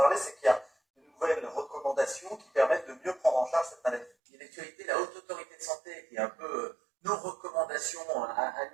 c'est qu'il y a de nouvelles recommandations qui permettent de mieux prendre en charge cette maladie. Et l'actualité, la Haute Autorité de Santé, qui est un peu nos recommandations à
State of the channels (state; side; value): drops out; left; at 4.1 s